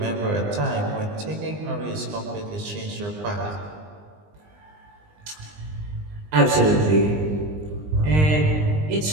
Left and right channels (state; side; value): late; left; 20 ms